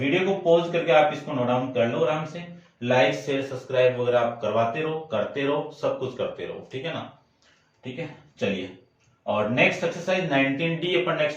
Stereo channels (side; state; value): both; identical; correlation 1.00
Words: को पॉज करके आप इसको नोट डाउन कर लो आराम से। लाइक शेयर सब्सक्राइब वगैरह आप करवाते रहो, करते रहो, सब कुछ करते रहो। ठीक है ना, ठीक है, चलिए। और नेक्स्ट एक्सरसाइज 19D अपन